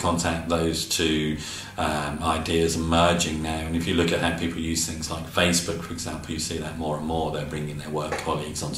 those two ideas are merging now. And if you look at how people use things like Facebook, for example, you see that more and more. They're bringing their work colleagues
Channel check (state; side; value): identical; both; correlation 1.00